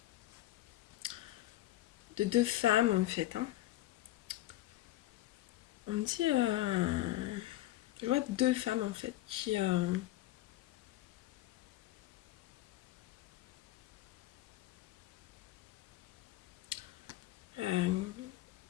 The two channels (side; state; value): right; quieter; 15.7 dB